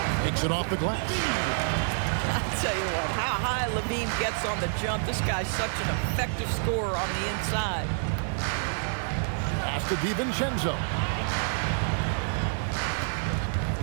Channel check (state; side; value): silent; left; 59 dB below the other